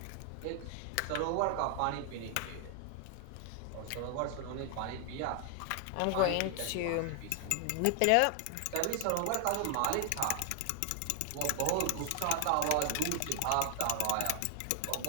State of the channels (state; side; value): different; both; correlation 0.00